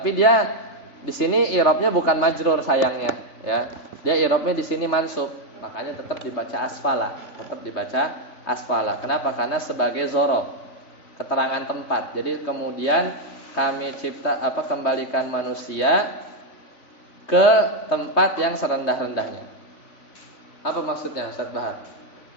dia di sini i'rabnya bukan majrur sayangnya ya. Dia i'rabnya di sini mansub. Makanya tetap dibaca asfala. Kenapa? Karena sebagai zorof, keterangan tempat. Jadi kemudian kami kembalikan manusia ke tempat yang serendah-rendahnya. Apa maksudnya Ustaz Bahar?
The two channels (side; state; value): right; late; 3.5 ms